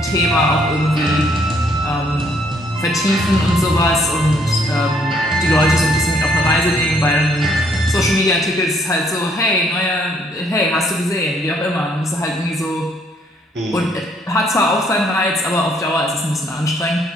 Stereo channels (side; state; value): both; normal; correlation 0.67